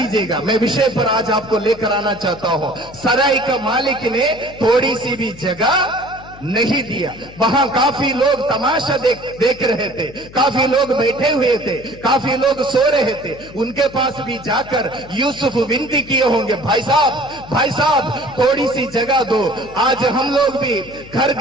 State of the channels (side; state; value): left; noise; hum, 19 dB below the sound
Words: मैं विषय पर आज आपको लेकर आना चाहता हूं। सराय का मालिक ने थोड़ी सी भी जगह नहीं दिया। वहां काफी लोग तमाशा देख रहे थे, काफी लोग बैठे हुए थे, काफी लोग सो रहे थे। उनके पास भी जाकर यूसुफ विनती किए होंगे, भाई साहब थोड़ी सी जगह दो। आज हम लोग भी घर